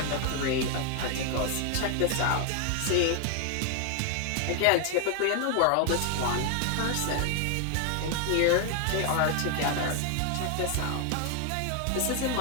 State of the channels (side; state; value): both; different; correlation 0.00